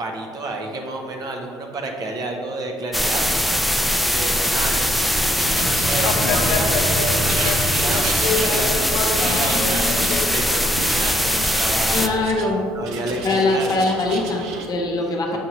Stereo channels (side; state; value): both; normal; correlation 0.74